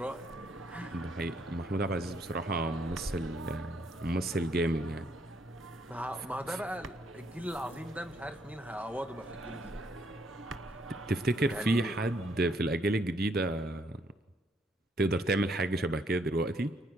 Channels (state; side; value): normal; both; correlation 0.70